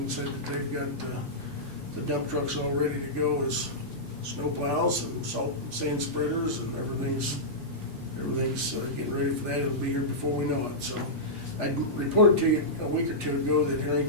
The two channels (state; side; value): normal; both; correlation -0.13